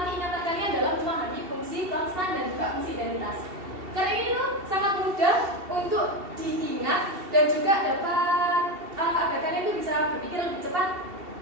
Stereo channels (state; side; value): late; left; 2.7 ms